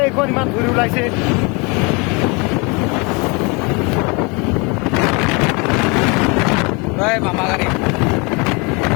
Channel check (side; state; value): right; quieter; 29.5 dB